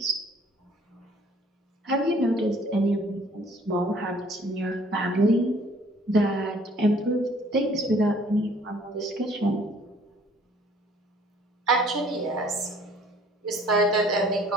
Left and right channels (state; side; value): normal; both; correlation 0.57